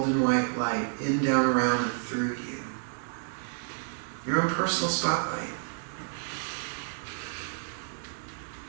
white light, in, down, around, and through you. Your own personal spotlight.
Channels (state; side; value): silent; left; 58 dB below the other